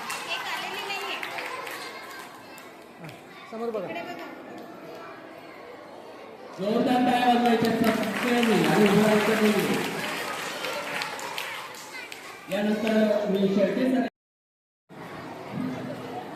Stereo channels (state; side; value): identical; both; correlation 1.00